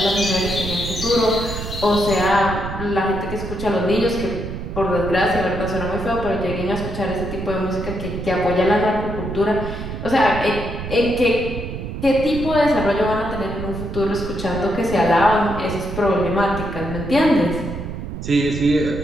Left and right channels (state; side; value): noise; right; rumble, 7 dB below the sound